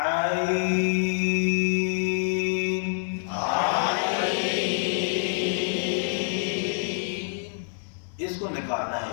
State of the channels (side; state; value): right; silent; 56 dB below the other